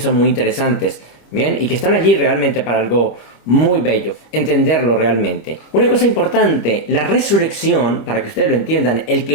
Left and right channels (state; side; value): late; right; 26 ms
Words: muy interesantes, ¿bien? Y que están allí realmente para algo muy bello, entenderlo realmente. Una cosa importante, la resurrección, para que ustedes lo entiendan, el que